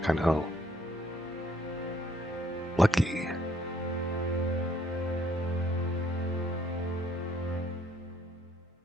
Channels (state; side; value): normal; both; correlation 0.66